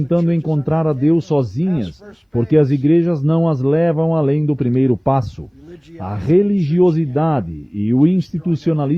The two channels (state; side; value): identical; both; correlation 1.00